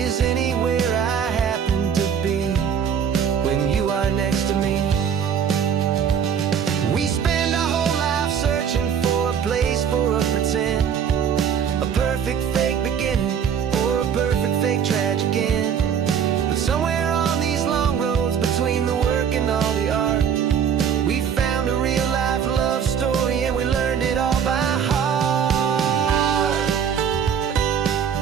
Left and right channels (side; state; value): left; quieter; 7.8 dB